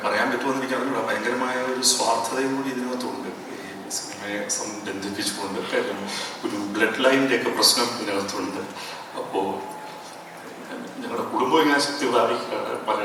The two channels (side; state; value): both; identical; correlation 1.00